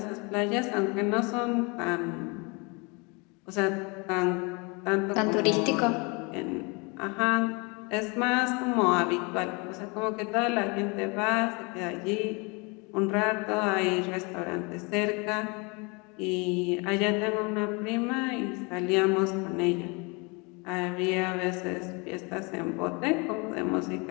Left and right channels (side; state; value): right; quieter; 29.7 dB